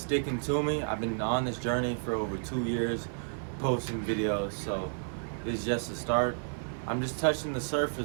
to me. I've been on this journey for over 2 years, posting videos, so this is just the start. I'm just touching the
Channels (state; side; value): silent; left; digital silence